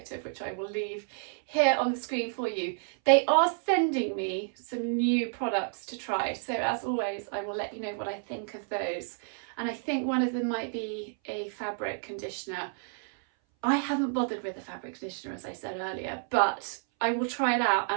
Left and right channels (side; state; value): left; silent; 58 dB below the other